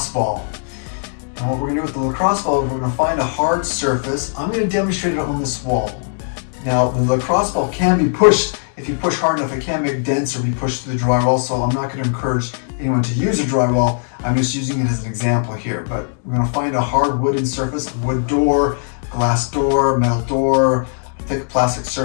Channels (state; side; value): silent; right; digital silence